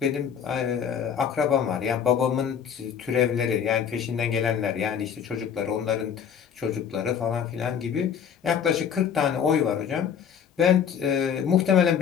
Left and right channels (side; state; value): right; quieter; 7.8 dB